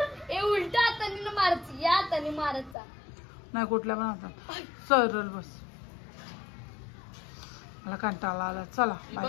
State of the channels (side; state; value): right; drops out; at 2.8 s